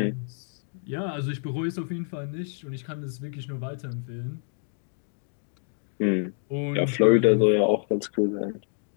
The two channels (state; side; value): silent; right; 60 dB below the other